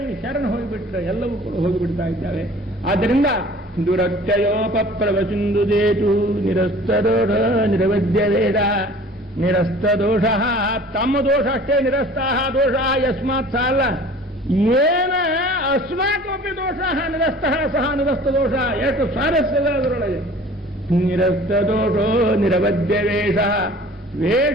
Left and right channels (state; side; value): normal; both; correlation 0.47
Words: ಶರಣ ಹೋಗಿಬಿಟ್ರೆ ಎಲ್ಲವೂ ಕೂಡ ಹೋಗಿಬಿಡ್ತಾ ಇದ್ದಾವೆ. ಆದ್ದರಿಂದ ದುರತ್ಯಯೋಪಪ್ಲವ ಸಿಂಧು ಸೇತು ನಿರಸ್ತದೋಷ ನಿರವಧ್ಯ ವೇದ ನಿರಸ್ತ ದೋಷ. ತಮ್ಮ ದೋಷ ಅಷ್ಟೇ, ನಿರಸ್ತಾಹ ದೋಷ ಯಸ್ಮಾತ್ ಸಾಲ ಏನ ಅಸ್ಮಾಕಮಪಿ ದೋಷ ನಿರಸ್ತಃ ಸಹ ನಿರಸ್ತ ದೋಷ. ಎಷ್ಟು ಸ್ವಾರಸ್ಯದ ಅದರೊಳಗೆ. ನಿರಸ್ತ ದೋಷೋ ನಿರವಧ್ಯ ವೇಷ.